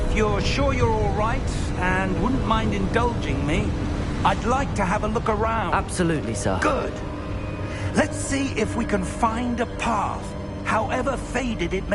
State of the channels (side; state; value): both; identical; correlation 1.00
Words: you're sure you're all right, and wouldn't mind indulging me, I'd like to have a look around. Absolutely, sir. Good. Let's see if we can find a path, however faded it